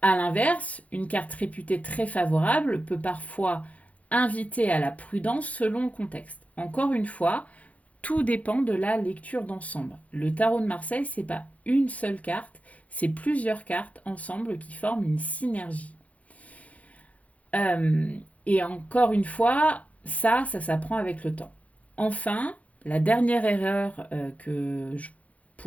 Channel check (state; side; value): late; right; 0.068 ms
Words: À l'inverse, une carte réputée très favorable peut parfois inviter à la prudence selon le contexte. Encore une fois, tout dépend de la lecture d'ensemble. Le tarot de Marseille, c'est pas une seule carte, c'est plusieurs cartes ensemble qui forment une synergie. Et encore une fois, ça s'apprend avec le temps. Enfin, la dernière erreur que je